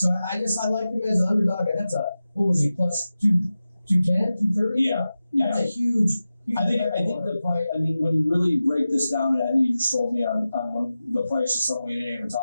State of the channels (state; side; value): inverted; both; correlation -0.94